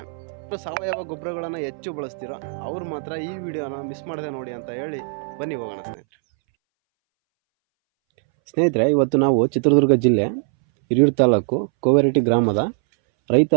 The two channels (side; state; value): left; silent; 63 dB below the other